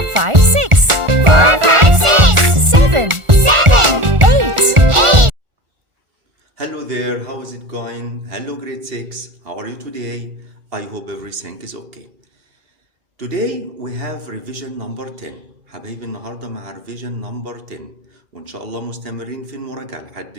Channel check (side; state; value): left; late; 1.4 ms